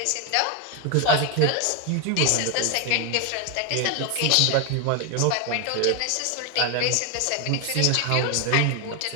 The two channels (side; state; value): both; different; correlation 0.01